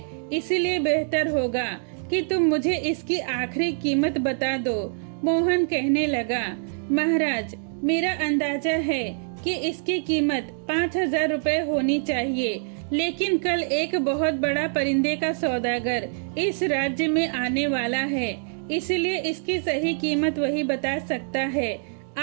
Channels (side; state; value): left; silent; digital silence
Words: इसलिए बेहतर होगा कि तुम मुझे इसकी आखिरी कीमत बता दो। मोहन कहने लगा, महाराज, मेरा अंदाजा है कि इसकी कीमत 5000 रुपए होनी चाहिए, लेकिन कल एक बहुत बड़ा परिंदे का सौदागर इस राज्य में आने वाला है, इसलिए इसकी सही कीमत वही बता सकता है।